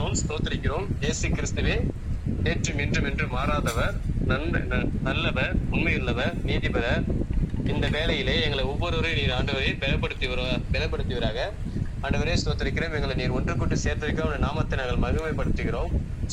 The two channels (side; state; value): both; identical; correlation 1.00